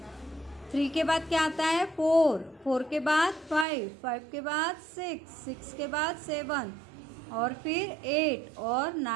के बाद क्या आता है, 4 के बाद 5 के बाद 6 के बाद 7 और फिर 8 और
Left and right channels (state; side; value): drops out; left; at 3.7 s